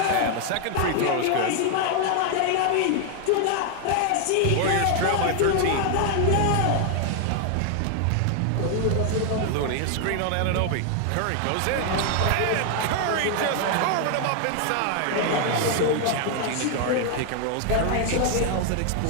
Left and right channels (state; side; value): different; both; correlation 0.00